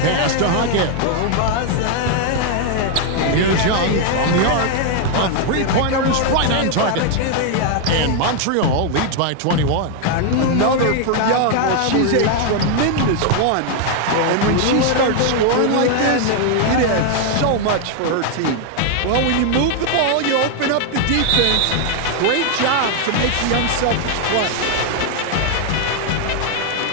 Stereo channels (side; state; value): both; different; correlation 0.00